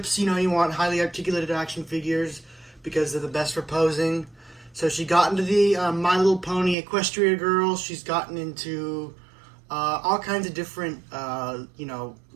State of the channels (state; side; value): drops out; left; at 6.8 s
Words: You know, you want highly articulated action figures because they're the best for posing. So she got into the My Little Pony Equestria Girls. She's gotten into all kinds of different, you know,